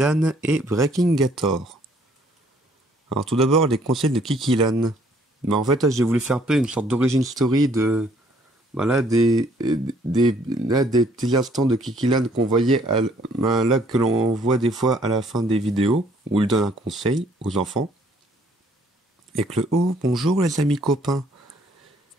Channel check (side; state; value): both; normal; correlation 0.63